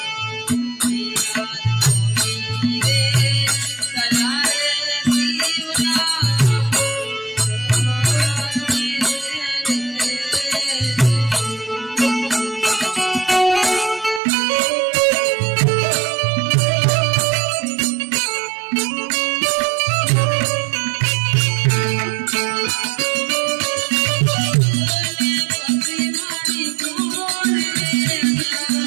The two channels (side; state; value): left; drops out; at 14.2 s